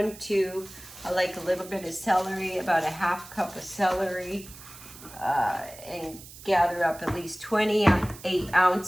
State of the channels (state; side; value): noise; right; hiss, 17 dB below the sound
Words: 2. I like a little bit of celery, about a ½ cup of celery, and gather up at least 28